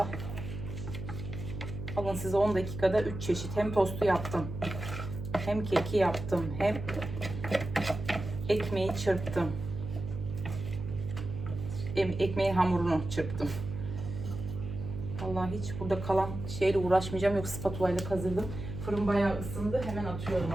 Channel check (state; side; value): noise; right; hum, 7 dB below the sound